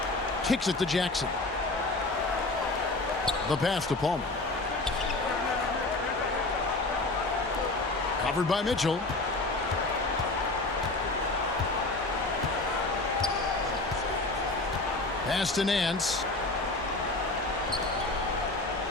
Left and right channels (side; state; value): right; quieter; 3.0 dB